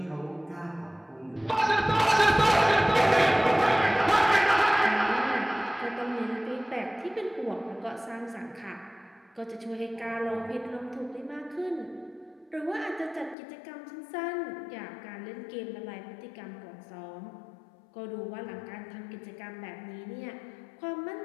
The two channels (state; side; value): drops out; right; at 13.4 s